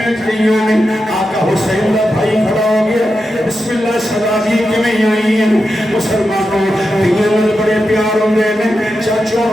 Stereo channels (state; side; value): normal; both; correlation 0.89